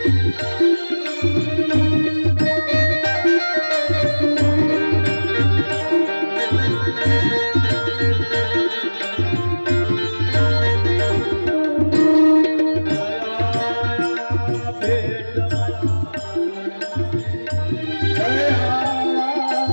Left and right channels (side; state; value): both; inverted; correlation -1.00